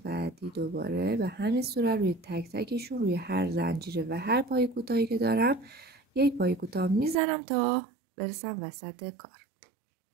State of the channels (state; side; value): drops out; left; at 7.2 s